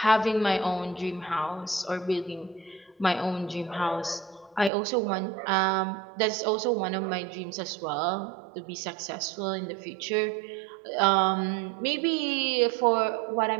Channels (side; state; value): left; drops out; at 4.7 s